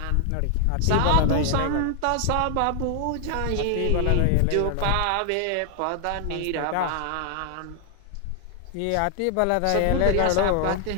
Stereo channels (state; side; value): different; both; correlation 0.00